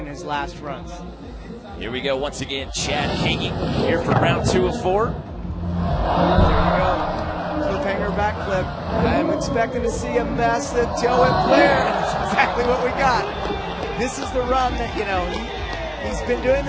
in his last runs. Here we go once again, Chad Kagy here for round 2 of 4. There you go. Cliffhanger backflip. I'm expecting to see a massive tail whip flare. That's exactly what we got. This is the run that, you know, he's been doing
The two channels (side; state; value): both; identical; correlation 1.00